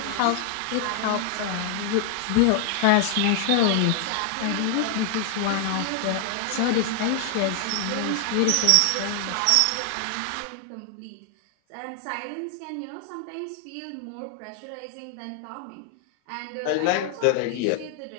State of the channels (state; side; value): different; both; correlation 0.00